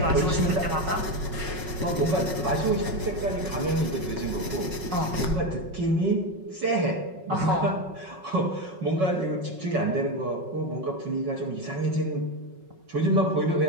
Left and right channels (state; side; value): late; left; 5.4 ms